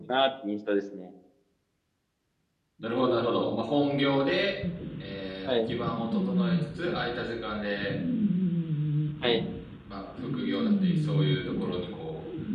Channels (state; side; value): identical; both; correlation 1.00